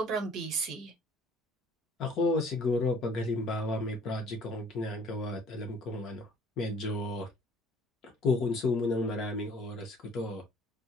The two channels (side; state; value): both; normal; correlation 0.54